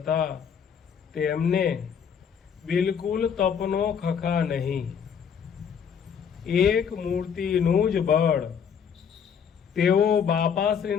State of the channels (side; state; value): right; quieter; 7.3 dB